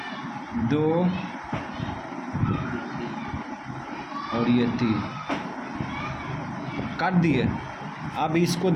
2, और ये 3 काट दिए। अब इसको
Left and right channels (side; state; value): both; identical; correlation 1.00